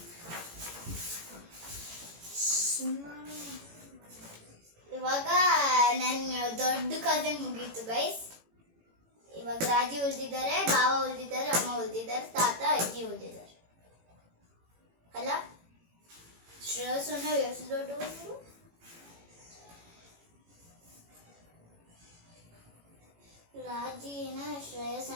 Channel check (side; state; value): left; late; 18 ms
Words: ಇವಾಗ ನನ್ನ ದೊಡ್ಡ ಕಸಿನ್ ಮುಗೀತು ಗೈಸ್. ಇವಾಗ ರಾಜಿ ಉಳಿದಿದ್ದಾರೆ, ಬಾವ ಉಳಿದಿದ್ದಾರೆ, ಅಮ್ಮ ಉಳಿದಿದ್ದಾರೆ, ತಾತ ಅಜ್ಜಿ ಉಳಿದಿದ್ದಾರೆ. ಅಲ್ಲ ಶ್ರೇಯಸ್ಸನ್ನ ಎಷ್ಟು ದೊಡ್ಡವರು? ರಾಜಿನ